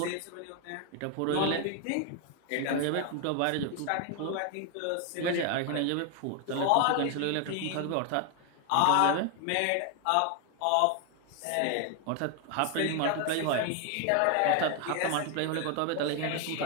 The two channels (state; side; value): different; both; correlation 0.01